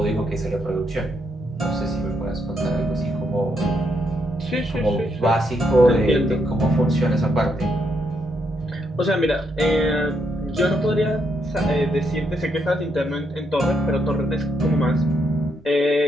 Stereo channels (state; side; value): normal; both; correlation 0.77